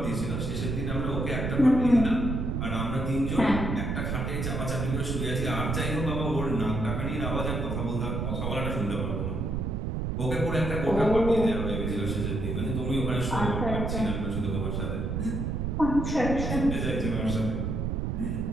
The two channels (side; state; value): right; noise; rumble, 1 dB below the sound